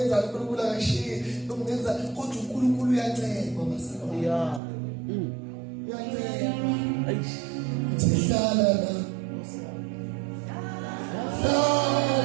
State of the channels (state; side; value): drops out; left; at 4.6 s